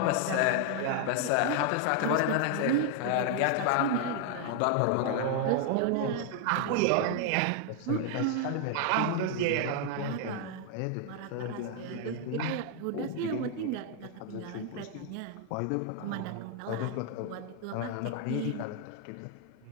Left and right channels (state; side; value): different; both; correlation 0.00